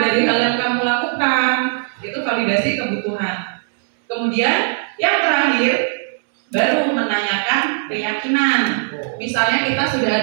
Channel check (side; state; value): left; silent; 64 dB below the other